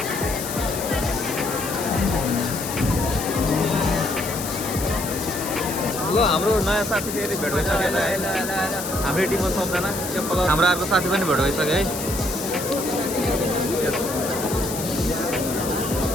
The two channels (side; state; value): left; noise; hiss, 7 dB below the sound